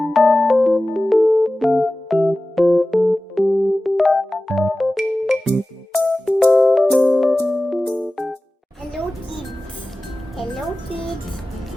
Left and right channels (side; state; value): both; normal; correlation 0.96